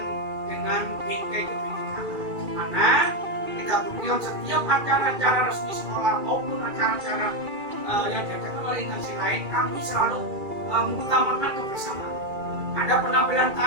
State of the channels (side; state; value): left; late; 2.3 ms